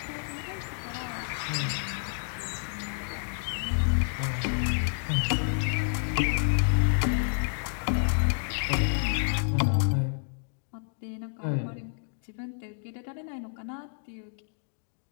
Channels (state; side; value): silent; right; digital silence